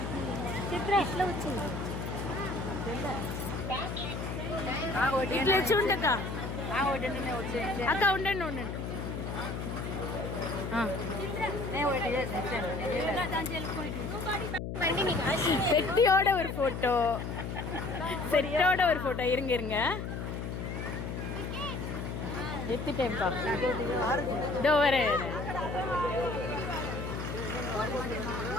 ఇట్లా వచ్చి ఉండక అక్క ఉండండి ఉండండి. செட்டியோட ஒரு போட்டோ, செட்டோட ஒரு போட்டோ. இருங்க இருங்க, எடுத்துட்டேன்ப்பா. இதோ வரேன்.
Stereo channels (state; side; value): noise; left; hum, 5 dB below the sound